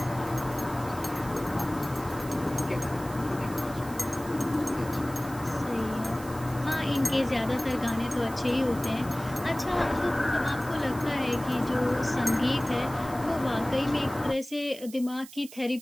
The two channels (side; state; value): right; noise; hiss, 17 dB below the sound